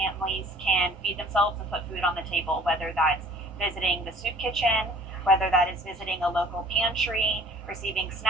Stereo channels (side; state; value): both; normal; correlation 0.51